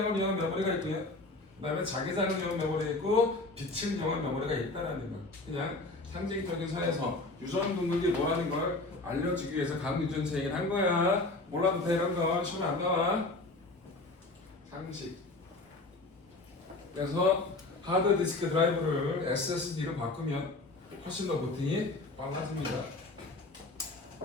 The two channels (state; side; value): quieter; right; 3.0 dB